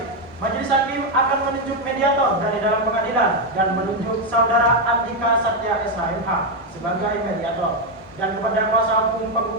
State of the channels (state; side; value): normal; both; correlation 0.05